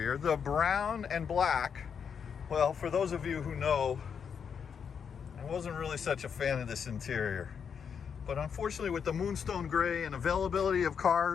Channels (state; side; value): quieter; right; 7.0 dB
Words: the brown and black. Well, for those of you who know, I wasn't really such a fan of this interior, but unfortunately with the Moonstone Gray and availability of